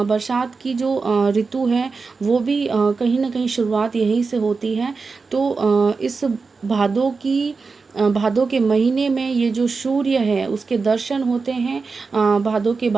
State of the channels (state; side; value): quieter; left; 4.5 dB